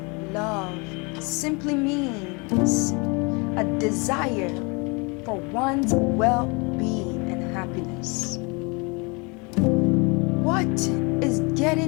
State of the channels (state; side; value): quieter; right; 29.8 dB